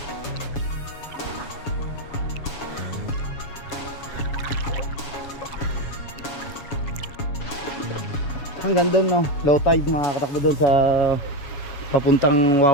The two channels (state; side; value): late; right; 7.1 ms